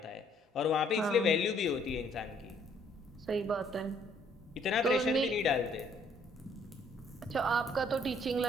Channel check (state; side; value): normal; both; correlation 0.64